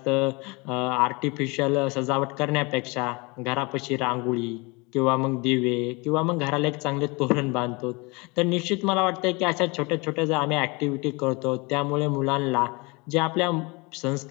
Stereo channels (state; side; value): quieter; right; 27.2 dB